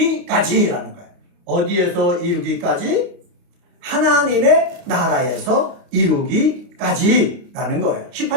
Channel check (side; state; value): left; late; 29 ms